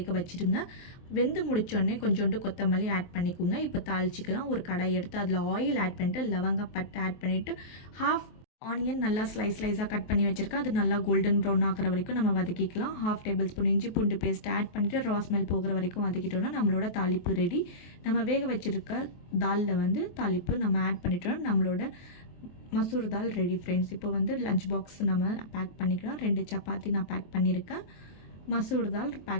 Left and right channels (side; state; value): right; late; 23 ms